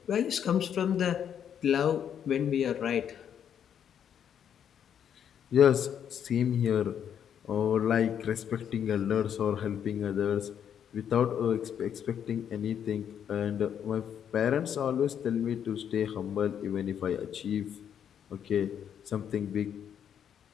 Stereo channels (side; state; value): right; quieter; 8.8 dB